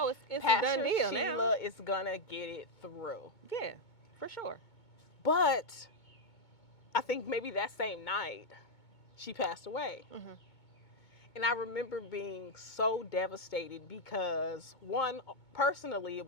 it's a Pastor done deal Sheila now. is going to get it through. Yeah, for sure. But I think maybe that same night, she passed away. And I remember being so devastated because, one, personally, it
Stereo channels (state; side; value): late; right; 2.2 ms